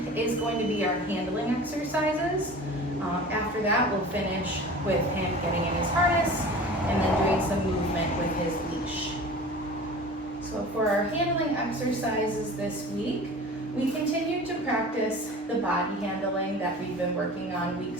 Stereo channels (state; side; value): normal; both; correlation 0.39